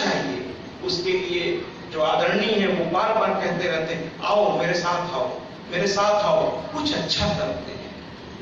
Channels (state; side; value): identical; both; correlation 1.00